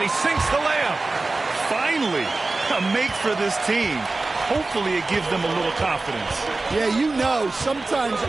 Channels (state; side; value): quieter; left; 3.4 dB